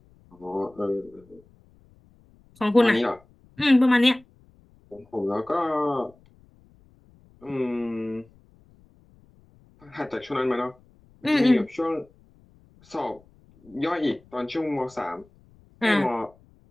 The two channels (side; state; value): left; noise; rumble, 29 dB below the sound